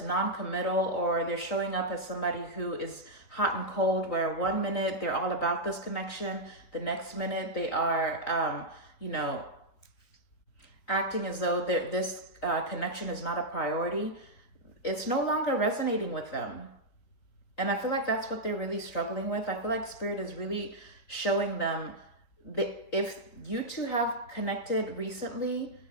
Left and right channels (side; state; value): right; late; 4.6 ms